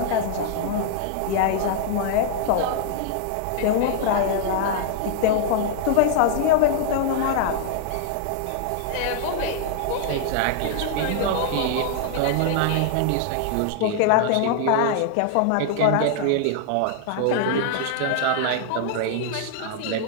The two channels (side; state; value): both; different; correlation -0.01